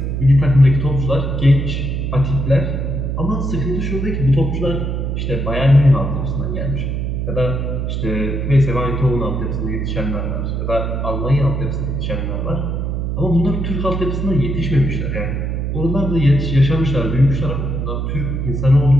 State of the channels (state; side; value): noise; right; hum, 2 dB below the sound